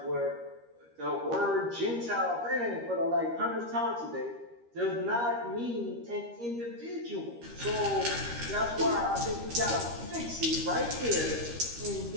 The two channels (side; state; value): left; late; 13 ms